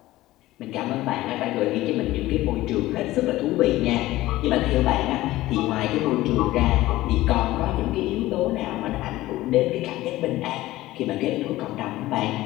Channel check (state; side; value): quieter; right; 16.9 dB